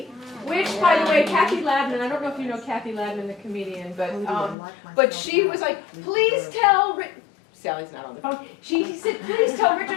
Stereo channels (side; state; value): right; drops out; at 4.5 s